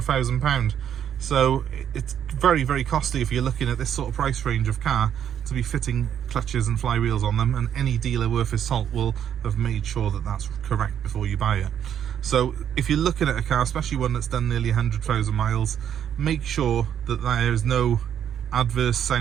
£1,000. So it's very, very costly if you're looking at this sort of price range of car to be fitting clutches and flywheels on them, and any dealer worth his salt will have made sure that that's correct before you buy it. So if you're looking at a car, especially one that's done nearly 100,000 miles, make sure that there is no adverse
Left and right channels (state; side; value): quieter; left; 9.3 dB